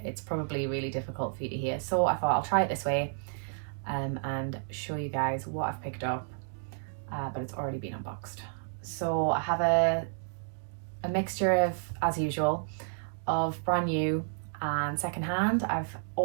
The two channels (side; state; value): left; silent; digital silence